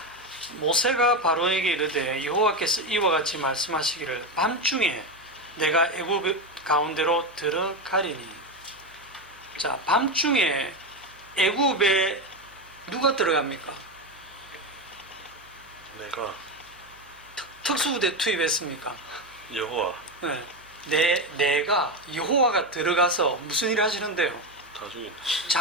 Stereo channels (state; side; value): noise; right; hum, 30 dB below the sound